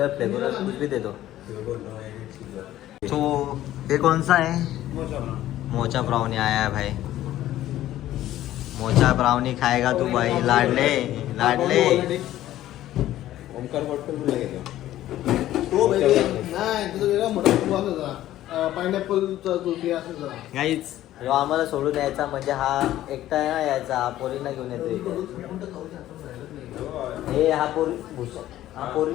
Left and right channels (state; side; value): quieter; right; 13.8 dB